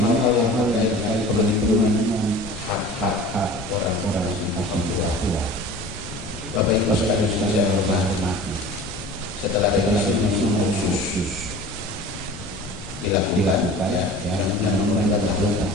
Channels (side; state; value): both; normal; correlation 0.40